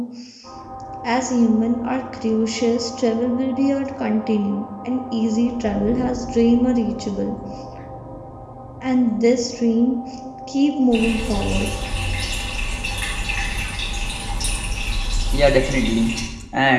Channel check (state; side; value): identical; both; correlation 1.00